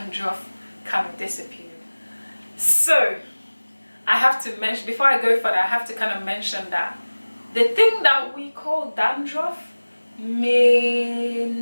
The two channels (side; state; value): both; inverted; correlation -1.00